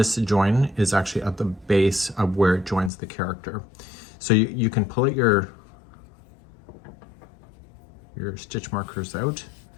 join is actually at the base of where it joins the character. So you can pull it your stitch markers out,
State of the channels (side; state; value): right; drops out; at 2.9 s